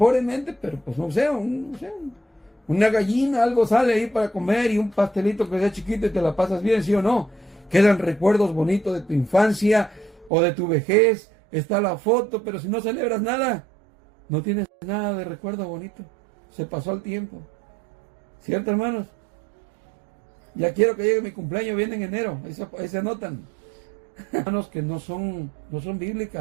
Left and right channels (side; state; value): left; drops out; at 10.3 s